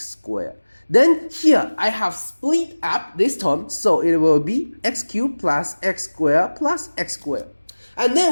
Then here I have split up this term, so it will be x cubed plus x squared plus x squared. And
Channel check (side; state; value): both; inverted; correlation -1.00